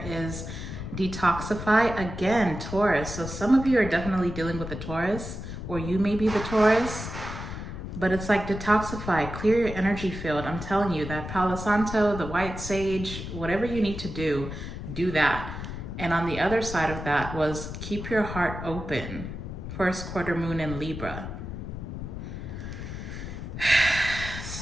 is detoxify. Again, Taurus. So some of you are definitely dealing with the Taurus, or you may be the Taurus. But it's like detoxify, clear your energy field. I'm telling you, that Palo Santo, the white sage, whatever you need to do that. And on the other side of that was keep your heart open. First quarter moon in Libra.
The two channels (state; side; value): noise; left; rumble, 8 dB below the sound